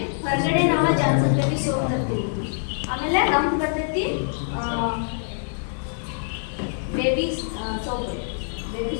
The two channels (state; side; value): silent; right; digital silence